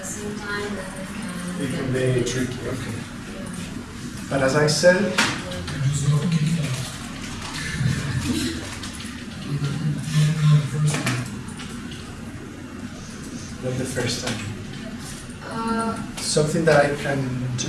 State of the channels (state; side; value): identical; both; correlation 1.00